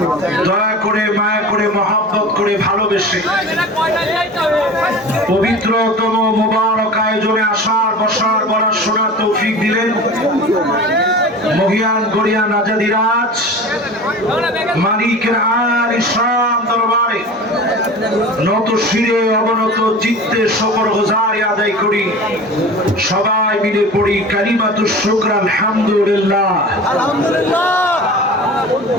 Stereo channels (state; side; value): normal; both; correlation 0.36